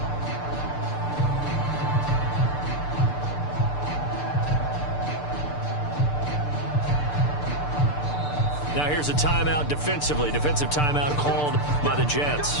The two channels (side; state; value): right; late; 6.8 ms